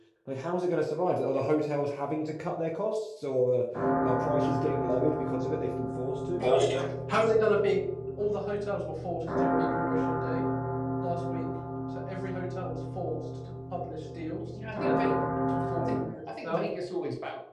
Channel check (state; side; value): identical; both; correlation 1.00